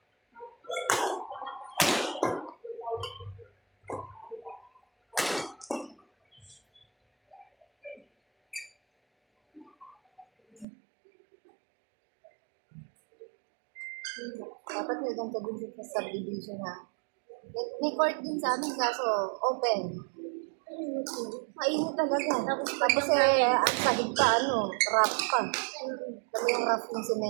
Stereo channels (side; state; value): left; drops out; at 10.7 s